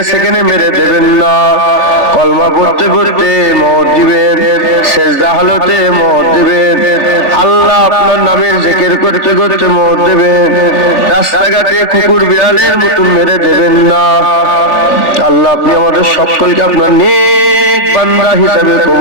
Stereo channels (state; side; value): late; right; 3.5 ms